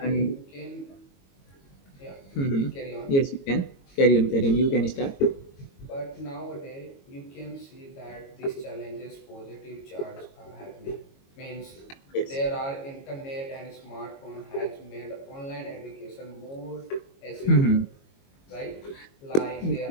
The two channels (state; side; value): late; right; 22 ms